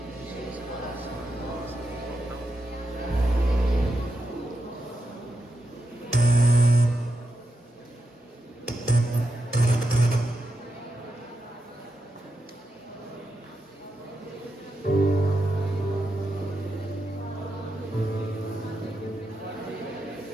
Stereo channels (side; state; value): both; normal; correlation 0.85